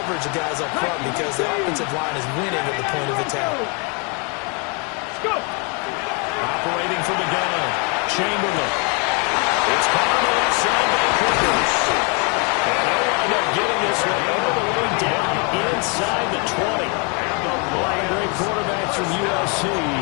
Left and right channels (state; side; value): quieter; right; 34.4 dB